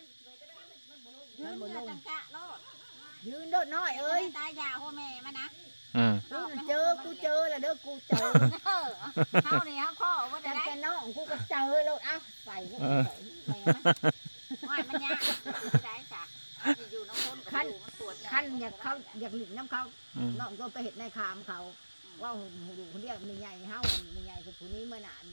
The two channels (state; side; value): inverted; both; correlation -1.00